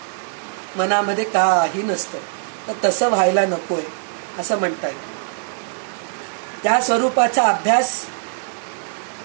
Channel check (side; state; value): left; silent; 59 dB below the other